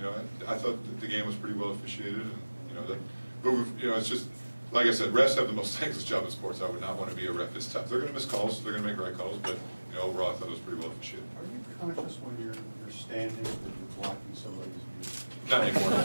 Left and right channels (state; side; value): inverted; both; correlation -1.00